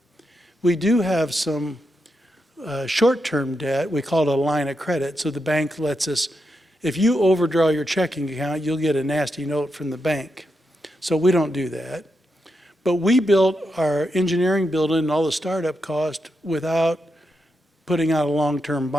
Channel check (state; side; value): normal; both; correlation 0.85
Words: We do have some short-term debt. We call it a line of credit. So the bank lets us, if you overdraw your checking account, you'll get a nasty note from the bank. So we don't do that. But we built our engineering building and all the startup cost without putting out a long-term